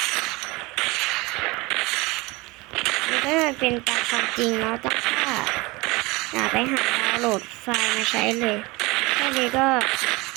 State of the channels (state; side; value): quieter; left; 23.6 dB